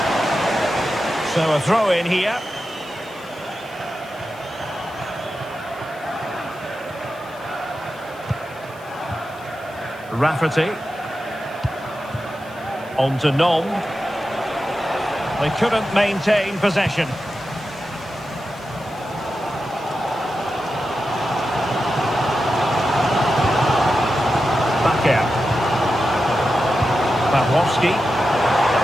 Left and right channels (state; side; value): noise; left; hiss, 26 dB below the sound